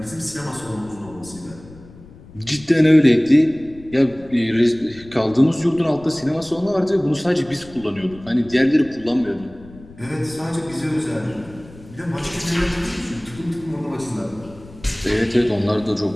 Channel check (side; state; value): left; noise; rumble, 20 dB below the sound